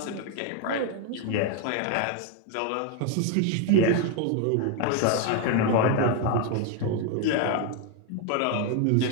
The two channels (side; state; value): both; different; correlation 0.01